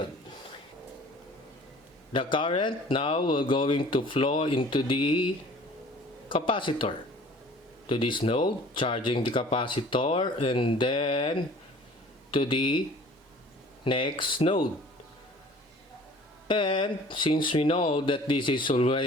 The current now will going to flow into the capacitor. To this node, charging the capacitor, and then to the next node. And since we know that this is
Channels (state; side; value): normal; both; correlation 0.48